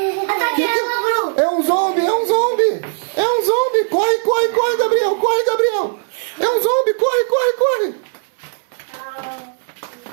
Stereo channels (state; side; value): silent; left; digital silence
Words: É um zombie, é um zombie! É um zombie! Corre, corre, corre, Gabriel! Corre, Gabriel! É um zombie! Corre, corre, corre!